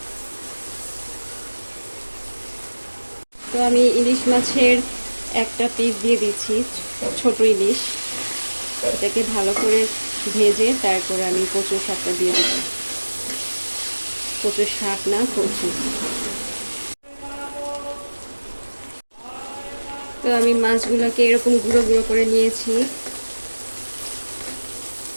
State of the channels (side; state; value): both; inverted; correlation -1.00